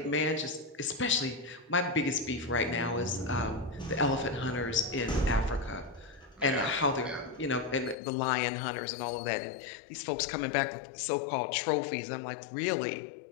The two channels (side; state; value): right; drops out; at 8.0 s